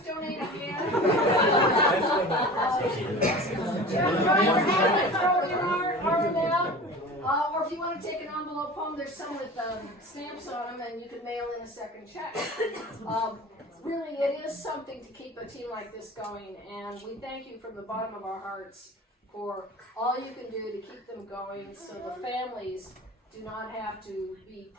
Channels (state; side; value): normal; both; correlation 0.37